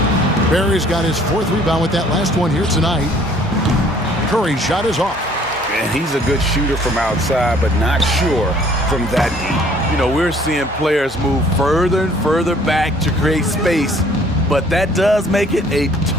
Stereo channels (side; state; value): both; normal; correlation 0.57